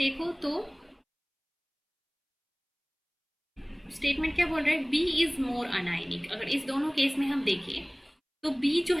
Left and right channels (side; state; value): both; identical; correlation 1.00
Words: तो स्टेटमेंट क्या बोल रहा है, बी इज मोर अनायनिक। अगर इस दोनों केस में हम देखें तो बी जो